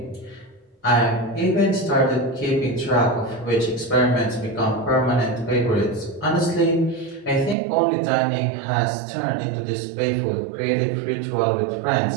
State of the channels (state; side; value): drops out; left; at 7.6 s